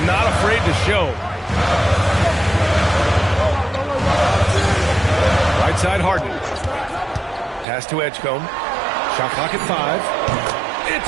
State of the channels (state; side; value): drops out; left; at 7.7 s